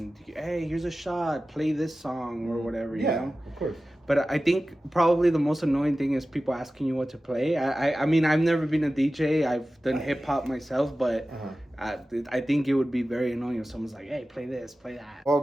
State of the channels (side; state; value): both; normal; correlation 0.95